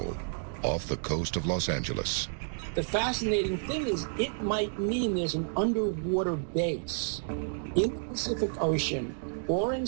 off the coast of Los Angeles. The fascinating thing is it might mean there's an underwater base in the Pacific Ocean or in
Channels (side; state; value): left; silent; digital silence